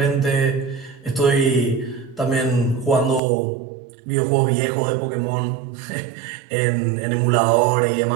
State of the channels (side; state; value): left; drops out; at 3.2 s